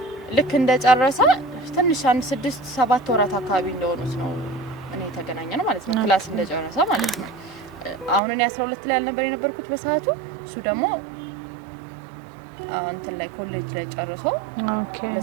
ልክ እንደጨረሰ ትንሽ 6-7 ወራት አካባቢ እንደሆኑት ነው እኔ ተገናኘነው ማለት ነው ክላስ እንደጨረሰ ማለት ነው አሁን እኔ 12 ላይ አልነበር የነበርኩት በሰዓቱ እሱ ደግሞ እንትን ላይ ኮሌጅ ላይ ጨርሶ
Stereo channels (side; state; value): left; drops out; at 8.2 s